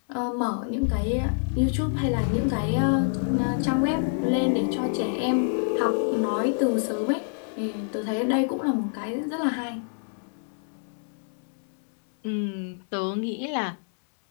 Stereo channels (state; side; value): silent; right; 60 dB below the other